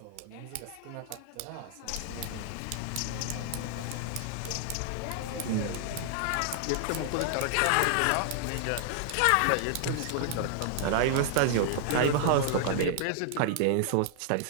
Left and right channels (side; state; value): both; different; correlation -0.01